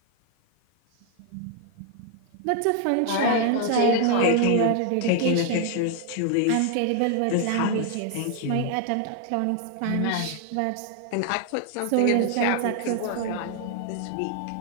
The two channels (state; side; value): different; both; correlation 0.00